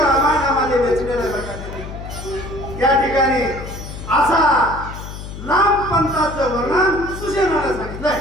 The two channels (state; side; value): noise; left; hum, 11 dB below the sound